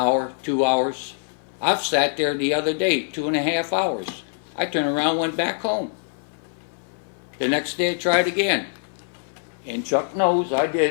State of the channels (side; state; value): right; silent; digital silence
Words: 2 hours, I've sat there the other day, 2.5 hours. I turned around, went back home. The next day I tried again. And Chuck knows I